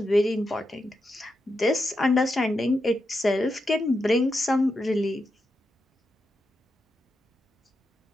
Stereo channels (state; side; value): normal; both; correlation 0.86